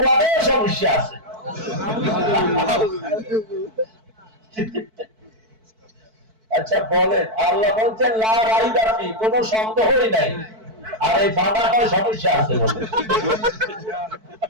সমস্যা আছে। আচ্ছা বলেন, আল্লাহ বলছেন লা রাইবা ফি, কোনো সন্দেহই নাই, আর এই বাবা কয় সমস্যা আছে বলে।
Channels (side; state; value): left; late; 4.6 ms